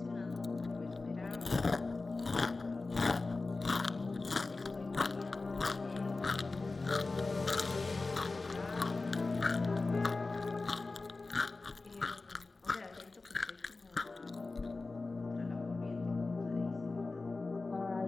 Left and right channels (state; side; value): quieter; right; 3.6 dB